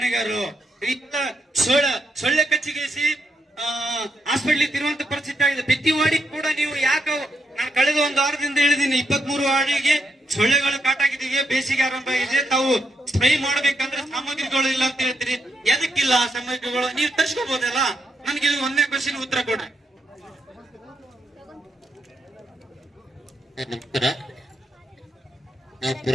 ಸೊಳ್ಳೆ ಕಚ್ಚಿಗೇಸಿ ಹಾಸ್ಪಿಟ್ಲಿಗೆ ತಿರುವಂತ ಪರಿಸ್ಥಿತಿ ಆಗಿದೆ. ಪ್ರತಿ ವಾರ್ಡಿಗೆ ಕೂಡ ನೀವು ಯಾಕೆ ನಾನು ಕಳೆದ ಒಂದು ವಾರದಿಂದ ಹೇಳಿದೀನಿ, 23 ವಾರ್ಡಿಗೆ ಸೊಳ್ಳೆಗಳು ಕಾಟಾಗಿದ್ದೀವಿ. ಬೇಸಿಗೆ ಆರಂಭ ಆಗಿದೆ. ತಾವು ಸ್ಪ್ರೇ ಮಾಡ್ಬೇಕಂದ್ರೆ ಸಾಮಗ್ರಿಗಳು ಇಲ್ಲ ಅಂತ ಹೇಳ್ತೀರಿ. ಎದಕ್ಕಿಲ್ಲ ಆ ಸಾಮಗ್ರಿಗಳು? ನೀವು ತರ್ಸ್ಕೋಬಹುದಲ್ಲ. ನನ್ಗೆ ಇದು ಒಂದೇ ಕ್ವಶನ್ ಉತ್ತರ ಕೊಡ್ರಿ. ನಮಸ್ಕಾರ. ನಾವು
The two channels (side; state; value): both; normal; correlation 0.80